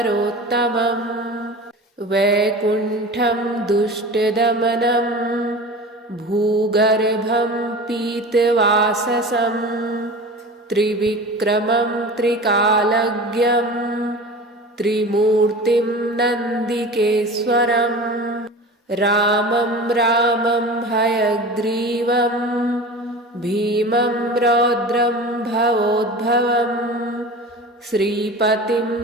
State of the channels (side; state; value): both; normal; correlation 0.35